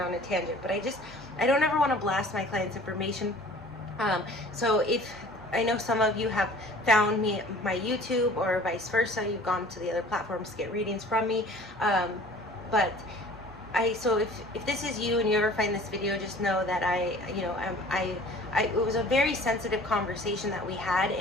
on a tangent, but I don't ever want to blast my clients' information. So if I know some of you have found me my YouTube, or vice versa, you've gone to the other platforms to get readings from me, but so if this is you and you ever find this video, just know that it was a very sensitive conversation that we had,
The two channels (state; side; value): normal; both; correlation 0.48